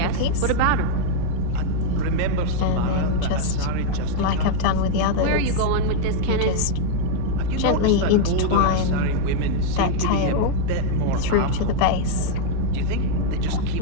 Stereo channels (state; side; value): different; both; correlation -0.01